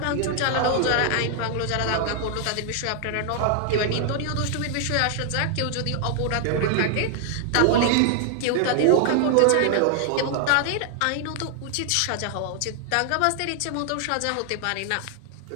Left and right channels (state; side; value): different; both; correlation 0.00